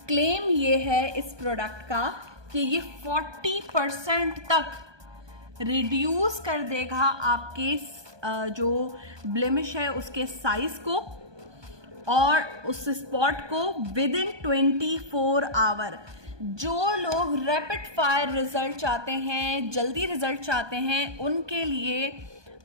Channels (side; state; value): left; late; 1.2 ms